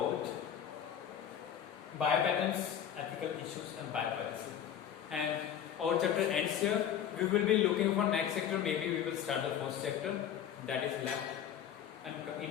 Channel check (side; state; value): right; quieter; 9.4 dB